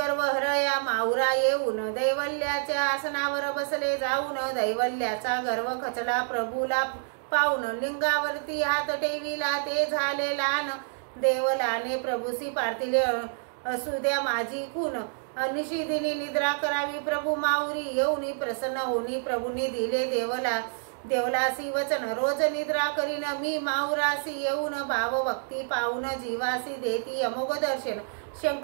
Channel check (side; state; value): left; silent; digital silence